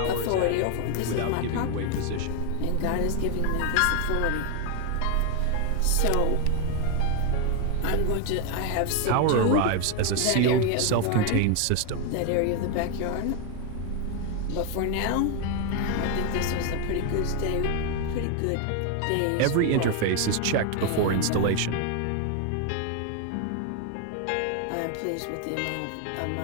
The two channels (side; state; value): both; different; correlation 0.01